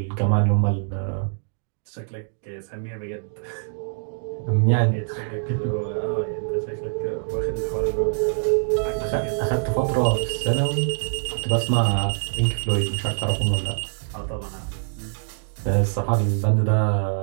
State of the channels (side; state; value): left; silent; digital silence